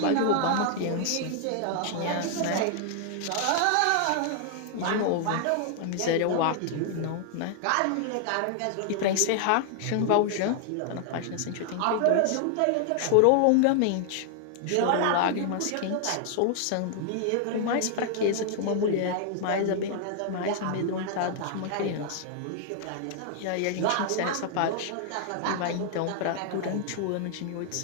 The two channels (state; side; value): different; both; correlation 0.00